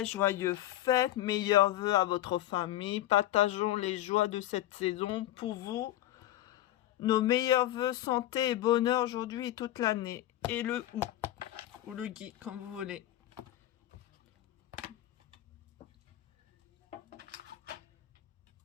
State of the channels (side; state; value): right; quieter; 14.1 dB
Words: joyeux fêtes, meilleurs vœux à votre famille. Partageons les joies de cette saison pour vous. Nos meilleurs vœux, santé et bonheur aujourd'hui et toute l'année. Et le OU ou le Guy, comme vous voulez.